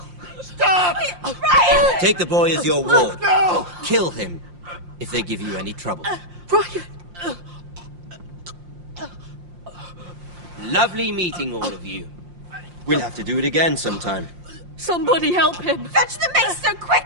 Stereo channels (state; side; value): late; left; 5.7 ms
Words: Stop! Ryan! Take the boy as your ward. No! Kill him if they give you any trouble. Ryan! Lovely meeting all of you. We'll have to do it again sometime. Somebody help him! Fetch the maester